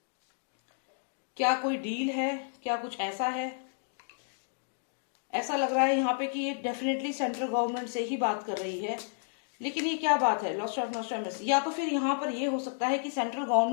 क्या कोई डील है? क्या कुछ ऐसा है? ऐसा लग रहा है यहाँ पे कि ये डेफिनेटली सेंट्रल गवर्नमेंट से ही बात कर रही है, लेकिन ये क्या बात है? Lost of Nostradamus. या तो फिर यहाँ पर ये हो सकता है कि सेंट्रल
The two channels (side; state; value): right; silent; digital silence